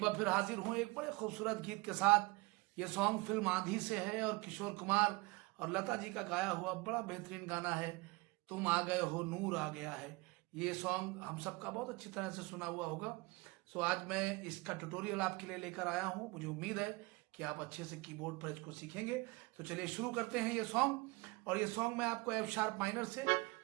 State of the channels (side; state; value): left; quieter; 24.8 dB